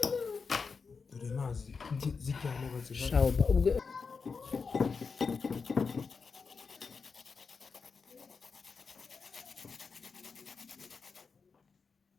dore mazi zijyana baziha Shauba ubwo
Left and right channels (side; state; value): right; quieter; 5.1 dB